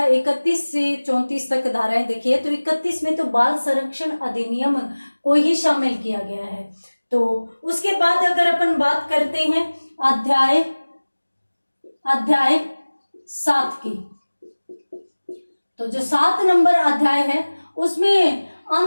31 से 34 तक धाराएं देखी है, तो 31 में तो बाल संरक्षण अधिनियम को ही शामिल किया गया है। तो उसके बाद अगर अपन बात करते हैं अध्याय 7 की, तो जो 7 नंबर अध्याय है उसमें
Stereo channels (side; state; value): both; inverted; correlation -1.00